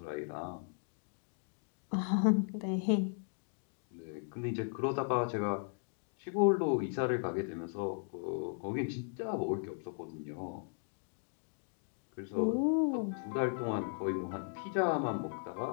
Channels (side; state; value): right; silent; 53 dB below the other